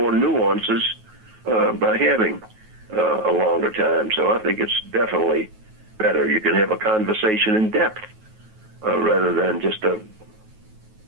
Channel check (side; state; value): left; late; 9.3 ms